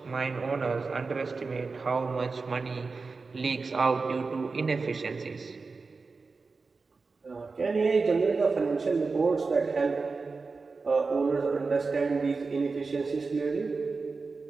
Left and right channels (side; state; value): left; quieter; 4.3 dB